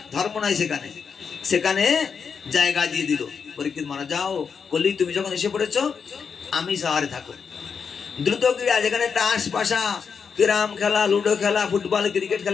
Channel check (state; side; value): quieter; right; 6.2 dB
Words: ধর্ম নাই সেখানে, সেখানে জায়গা দিয়ে দিল। পরীক্ষিত মহারাজ, যাও কলি, তুমি যখন এসে পড়েছো আমিষ আহারে থাকো। দ্রুত ক্রীড়া, যেখানে তাস পাশা, ক্যারাম খেলা, লুডো খেলা, ফুটবল ক্রিকেট